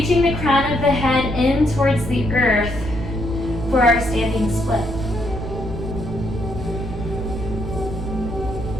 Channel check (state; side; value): noise; right; rumble, 10 dB below the sound